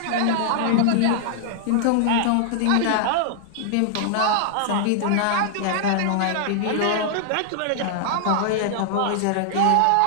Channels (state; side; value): different; both; correlation -0.01